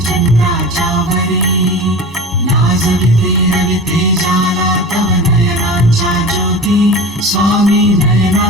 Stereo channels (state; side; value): normal; both; correlation 0.33